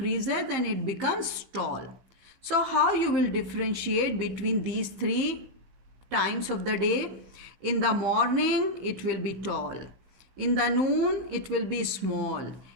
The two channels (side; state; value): left; late; 15 ms